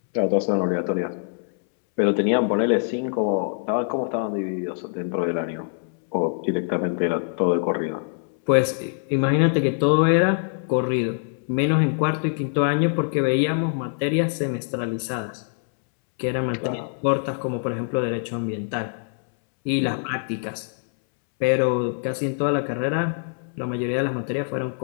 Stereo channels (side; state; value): right; silent; 63 dB below the other